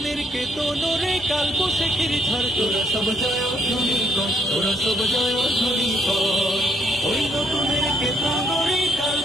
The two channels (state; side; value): normal; both; correlation 0.71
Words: কেতনরে কাল বৈশাখীর ঝড়। তোরা সব জয়ধ্বনি কর, তোরা সব জয়ধ্বনি কর, ওই নতুনের কেতনরে কাল